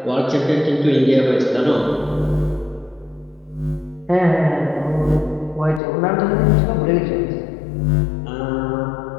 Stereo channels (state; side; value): drops out; right; at 5.8 s